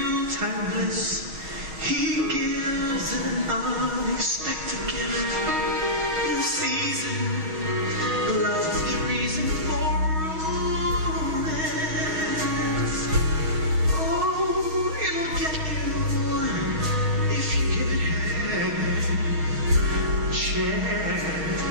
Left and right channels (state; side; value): late; left; 6.3 ms